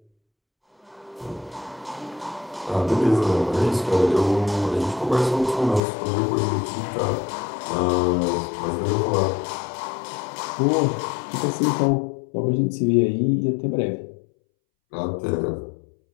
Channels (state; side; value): drops out; right; at 5.8 s